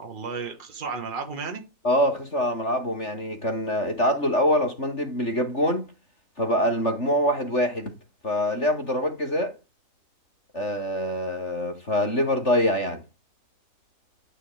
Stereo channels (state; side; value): late; right; 3.4 ms